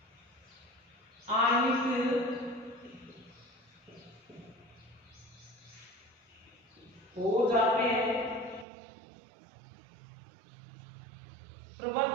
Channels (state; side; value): drops out; left; at 8.7 s